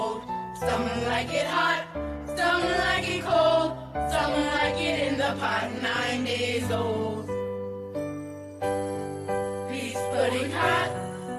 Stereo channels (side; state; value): both; identical; correlation 1.00